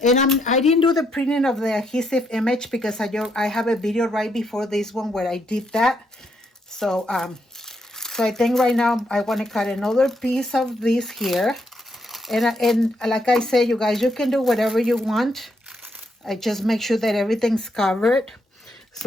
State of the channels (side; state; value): both; normal; correlation 0.77